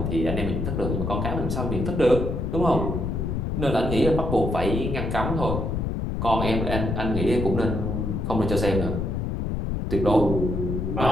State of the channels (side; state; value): left; noise; rumble, 1 dB below the sound